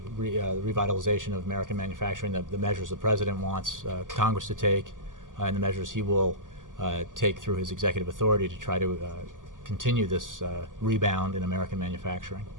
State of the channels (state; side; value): late; left; 0.88 ms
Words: revitalization of American manufacturing, the measures the president wants Congress to take, and the measures he will take through his executive authority to try to continue this rebound in American manufacturing.